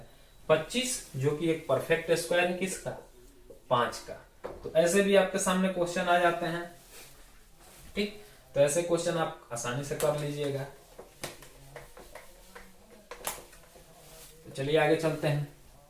25, जो कि एक परफेक्ट स्क्वायर है किसका 5 का। तो ऐसे भी आपके सामने क्वेश्चन आ जाते हैं। ठीक, तो ऐसे क्वेश्चन आप आसानी से कर लीजिएगा। तो चलिए आगे चलते हैं।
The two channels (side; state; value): both; identical; correlation 1.00